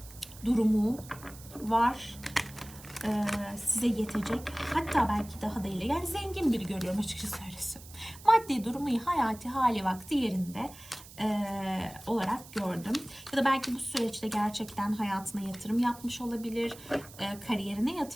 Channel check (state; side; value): noise; right; hiss, 18 dB below the sound